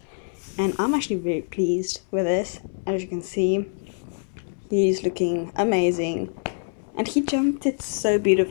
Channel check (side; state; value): right; silent; 61 dB below the other